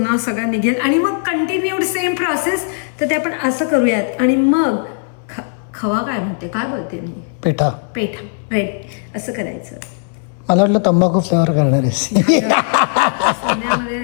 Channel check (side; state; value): right; silent; 68 dB below the other